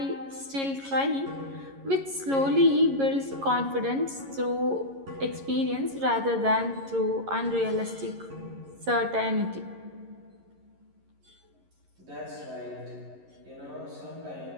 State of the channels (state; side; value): late; left; 11 ms